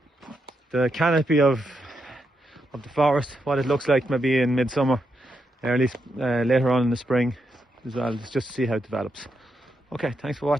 canopy of the forest, what it looks like maybe in midsummer, or at least later on in the spring as well, just to see how it develops. Okay, thanks for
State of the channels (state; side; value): normal; both; correlation 0.82